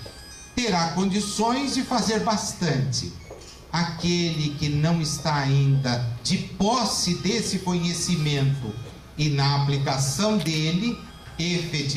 terá condições de fazer bastante. Aquele que não está ainda de posse desse conhecimento e na aplicação dele,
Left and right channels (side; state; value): both; identical; correlation 1.00